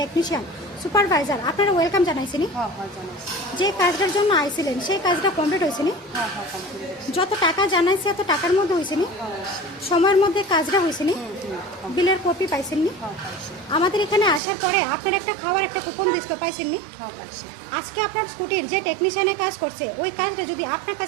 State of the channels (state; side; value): drops out; left; at 14.4 s